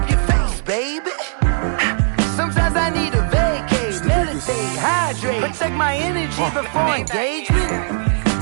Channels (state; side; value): silent; left; 62 dB below the other